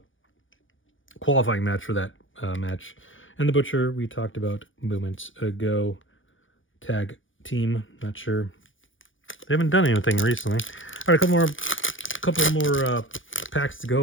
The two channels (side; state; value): right; late; 0.57 ms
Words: qualifying match for that match. And the Butcher, we talked about moments ago. Tag team, not sure. They haven't done anything recently. All right, a couple more packs to